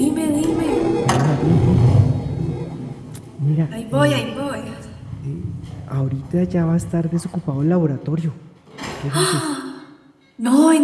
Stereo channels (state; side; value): identical; both; correlation 1.00